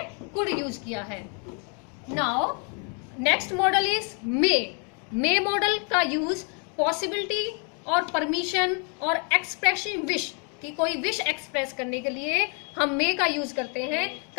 कुड यूज किया है. Now next model is may. May model का यूज पॉसिबिलिटी और परमिशन और एक्सप्रेसिंग विश, कि कोई विश एक्सप्रेस करने के लिए हम मे का यूज करते हैं.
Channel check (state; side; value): quieter; right; 38.1 dB